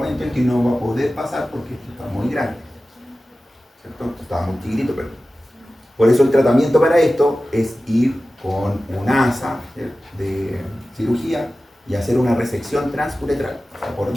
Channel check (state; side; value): normal; both; correlation 0.95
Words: en que no va a poder pasar porque esto está muy grande, ¿cierto? Está muy chiquitito, pero por eso el tratamiento para esto es ir con un asa de cirugía y hacer una resección transuretral, o sea, por